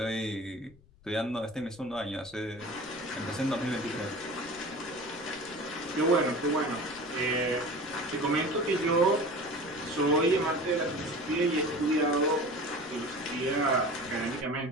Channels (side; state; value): left; noise; rumble, 26 dB below the sound